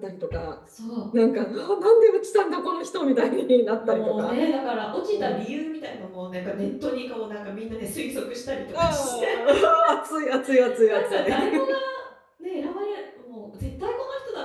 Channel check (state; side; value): identical; both; correlation 1.00